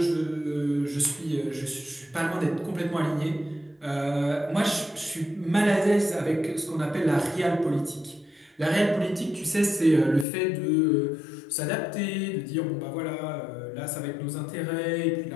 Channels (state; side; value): drops out; right; at 10.2 s